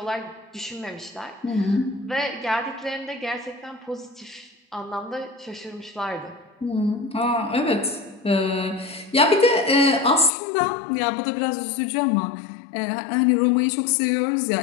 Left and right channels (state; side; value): drops out; right; at 10.3 s